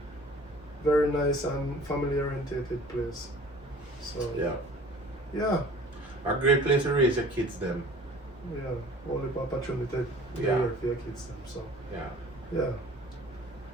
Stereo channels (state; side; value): normal; both; correlation 0.48